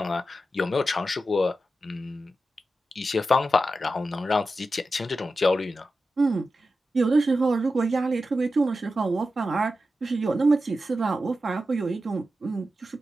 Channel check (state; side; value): normal; both; correlation 0.91